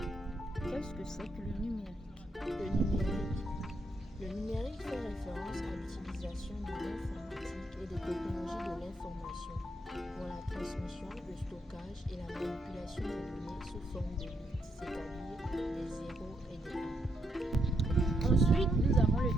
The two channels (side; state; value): both; normal; correlation 0.78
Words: Qu'est-ce que c'est que le numérique? Le numérique fait référence à l'utilisation de l'informatique et des technologies de l'information pour la transmission, le stockage et la manipulation des données sous forme de bits, c'est-à-dire des 0 et des 1. Ensuite, nous avons le